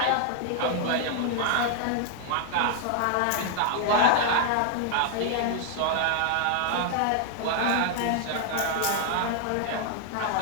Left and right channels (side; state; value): both; different; correlation 0.00